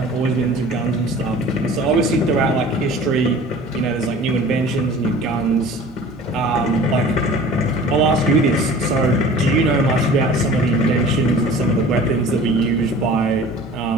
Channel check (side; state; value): both; normal; correlation 0.43